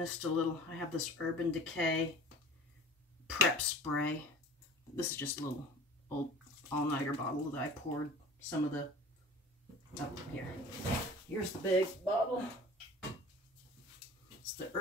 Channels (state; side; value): normal; both; correlation 0.41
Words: a little. I have this Urban Decay prep spray. This is just a little old all-nighter bottle that I poured some of the, oh, here. Here's the big bottle. It's the